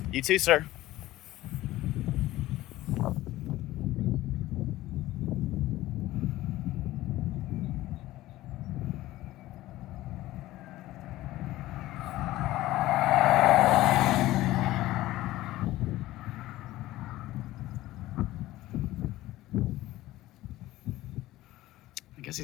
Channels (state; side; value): quieter; right; 16.3 dB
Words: You too, sir. I guess